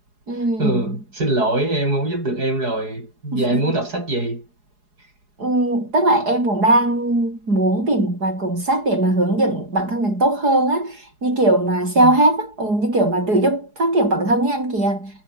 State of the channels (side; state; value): left; late; 4.8 ms